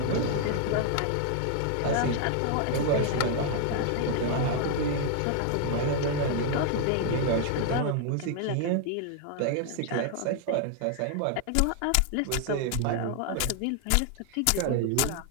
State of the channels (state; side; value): different; both; correlation 0.00